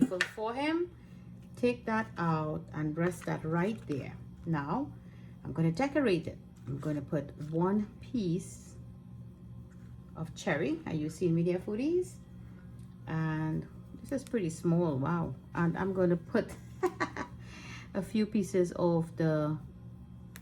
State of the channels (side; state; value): both; identical; correlation 1.00